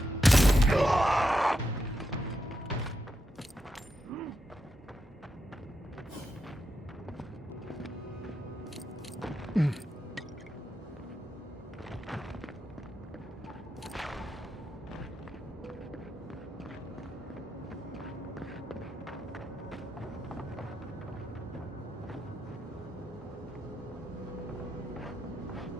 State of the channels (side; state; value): both; normal; correlation 0.85